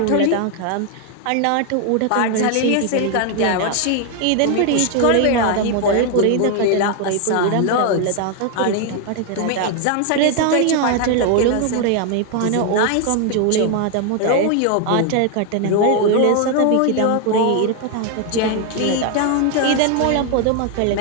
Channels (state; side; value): different; both; correlation 0.01